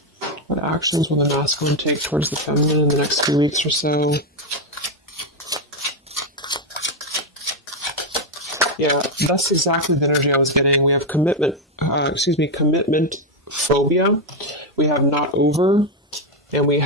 What actions will the masculine take towards the feminine in the next few weeks or so? Yeah, that's exactly the energy I was getting. We have commitment phobia. We have not over, and we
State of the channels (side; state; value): both; normal; correlation 0.05